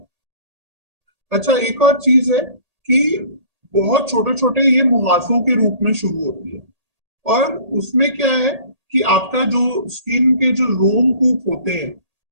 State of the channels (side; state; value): left; late; 1.8 ms